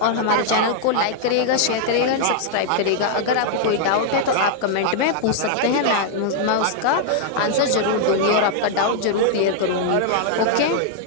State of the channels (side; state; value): both; different; correlation -0.01